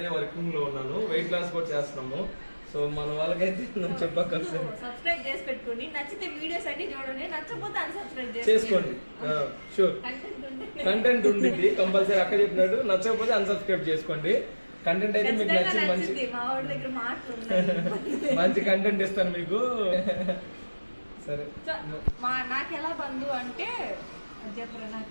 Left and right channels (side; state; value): both; inverted; correlation -1.00